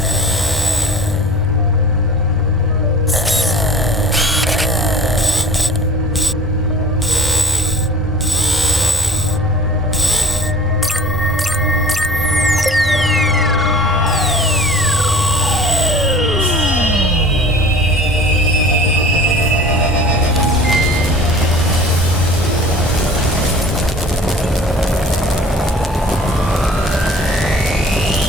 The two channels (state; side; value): normal; both; correlation 0.45